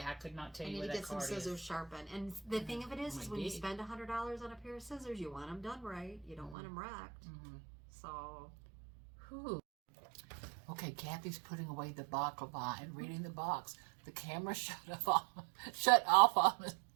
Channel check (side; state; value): left; drops out; at 6.6 s